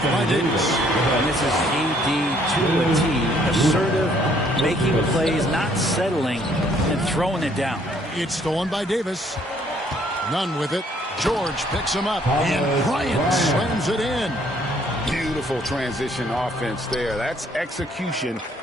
by Davis. And this is AD to a T. Assertive, making plays, not settling, and throwing it down. It's stolen by Davis. None with it. George picks him up, and Bryant slams it in. Beautiful transition offense there. That's execution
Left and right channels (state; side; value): normal; both; correlation 0.64